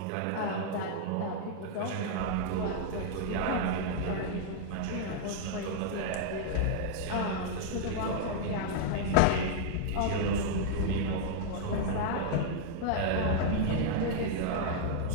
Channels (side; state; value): both; different; correlation -0.01